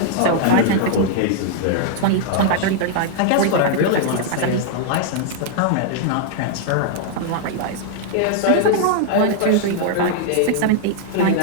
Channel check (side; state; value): both; different; correlation -0.01